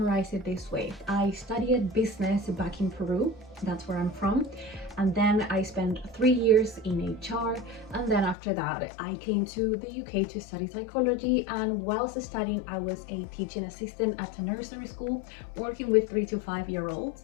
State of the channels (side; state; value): right; drops out; at 8.3 s